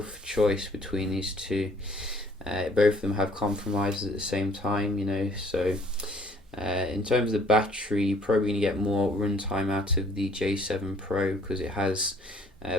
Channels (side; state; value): both; normal; correlation 0.59